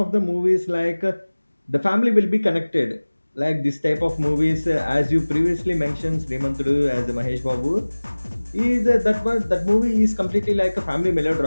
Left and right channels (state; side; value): inverted; both; correlation -1.00